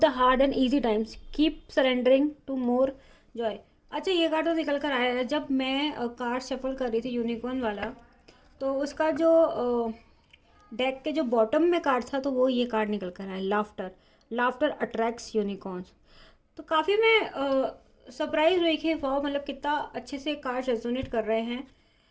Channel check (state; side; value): identical; both; correlation 1.00